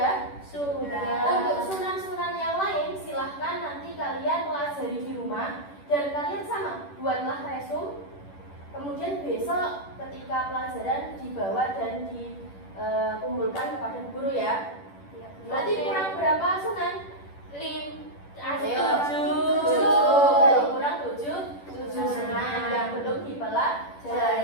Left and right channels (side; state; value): right; late; 10 ms